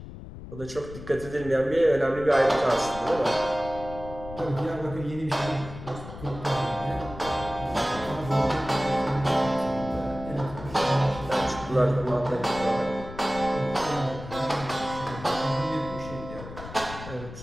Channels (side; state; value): left; noise; rumble, 13 dB below the sound